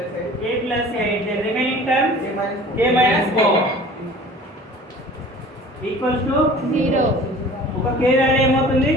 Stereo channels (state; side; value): normal; both; correlation 0.45